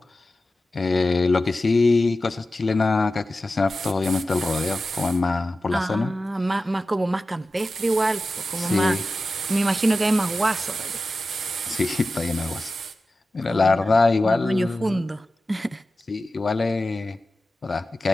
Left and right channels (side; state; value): both; normal; correlation 0.94